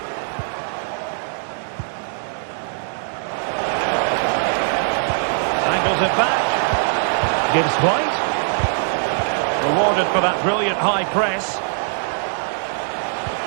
Angles it back. Gives White. that brilliant high press.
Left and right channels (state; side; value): silent; left; digital silence